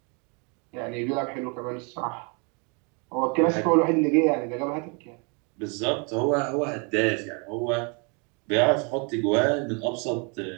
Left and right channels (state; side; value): quieter; left; 34.4 dB